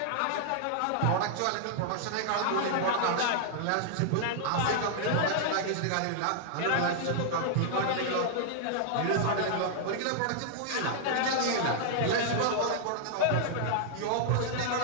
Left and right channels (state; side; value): different; both; correlation -0.01